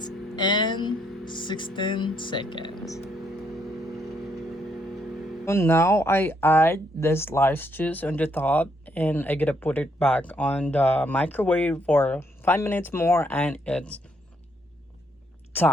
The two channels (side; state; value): both; normal; correlation 0.73